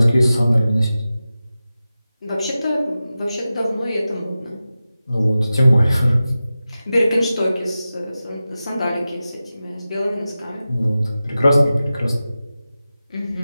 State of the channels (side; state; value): both; inverted; correlation -0.94